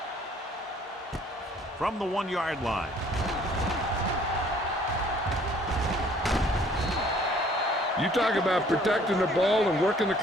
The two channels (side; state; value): both; normal; correlation 0.58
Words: From the 1-yard line. You talk about protecting the ball and working the